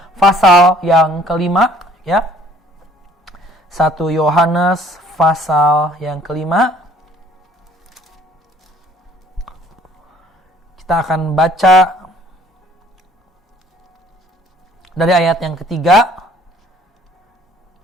pasal yang kelima, ya. 1 Yohanes pasal yang kelima. Kita akan baca dari ayat yang ketiga,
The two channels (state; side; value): normal; both; correlation 0.57